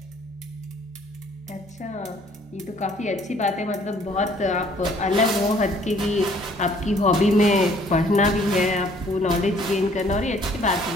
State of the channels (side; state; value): both; normal; correlation 0.59